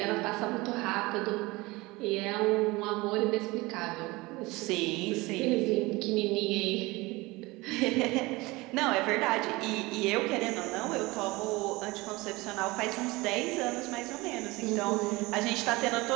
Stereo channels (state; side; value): quieter; left; 22.2 dB